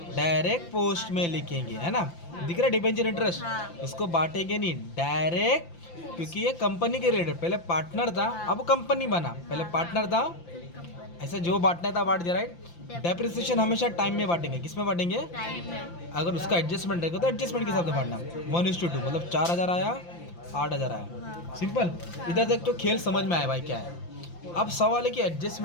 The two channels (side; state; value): right; late; 5.8 ms